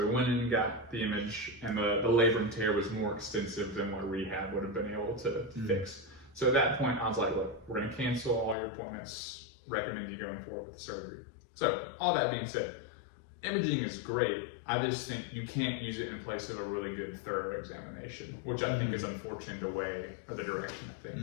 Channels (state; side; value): drops out; right; at 8.6 s